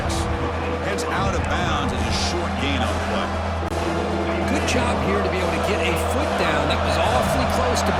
Heads out of bounds as a short gain on the play. Good job here to be able to get a foot down. That was awfully close to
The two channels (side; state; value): both; identical; correlation 1.00